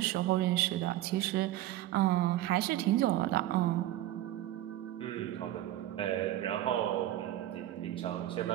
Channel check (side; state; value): left; quieter; 14.2 dB